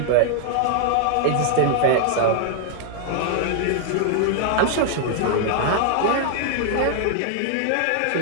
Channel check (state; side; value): different; both; correlation 0.00